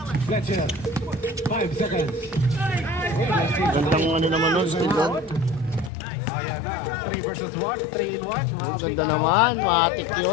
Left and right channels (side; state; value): right; drops out; at 5.9 s